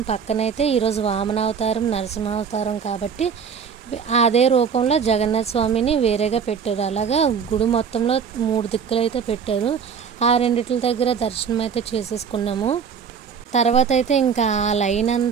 పక్కనైతే ఈరోజు వామన అవతారం నరసింహ అవతారం కాబట్టి అదే రూపంలో జగన్నాథ్ స్వామిని వేరేగా పెట్టారు. అలాగా గుడి మొత్తంలో 3 దిక్కులు అయితే పెట్టారు. ఆ రెండిట్ల దగ్గర దర్శనం అయితే చేసేసుకున్నాము. తర్వాత అయితే ఇంకా ఆ లైన్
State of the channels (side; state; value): left; quieter; 6.7 dB